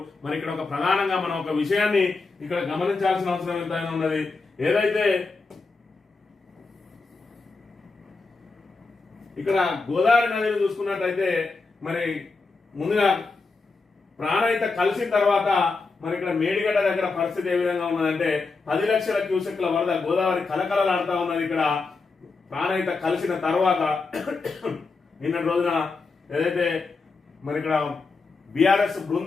మరి ఇక్కడ ఒక ప్రధానంగా మనం ఒక విషయాన్ని ఇక్కడ గమనించాల్సిన అవసరం ఎంతైనా ఉన్నది. ఏదైతే ఇక్కడ గోదావరి నదిని చూసుకున్నట్టయితే మరి ముందుగా ప్రాణహిత కలిసిన తర్వాత మరి ఇక్కడ మేడిగడ్డ దగ్గర పరిస్థితి ఏ విధంగా ఉన్నదంటే 10 లక్షల క్యూసెక్ల వరద గోదావరి కలకలలాడుతా ఉన్నది. ఇక్కడ ప్రాణహిత కలిసిన తర్వాత నిన్నటి రోజున ఏదైతే మరి ఇక్కడ బీఆర్ఎస్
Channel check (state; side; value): quieter; right; 4.1 dB